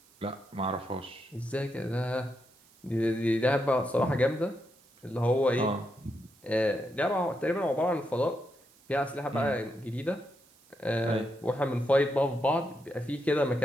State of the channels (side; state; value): right; noise; hiss, 29 dB below the sound